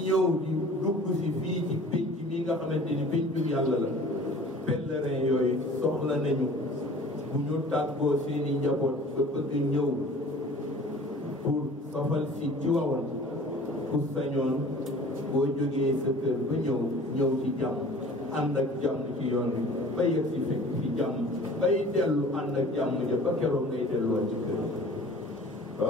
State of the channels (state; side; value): normal; both; correlation 0.46